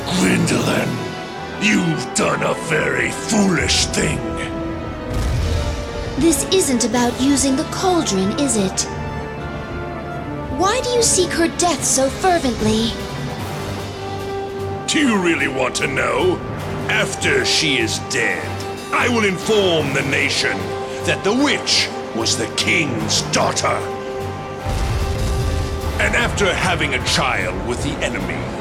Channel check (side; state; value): both; identical; correlation 1.00